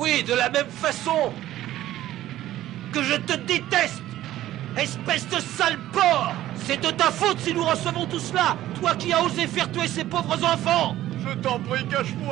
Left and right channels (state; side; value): quieter; left; 14.0 dB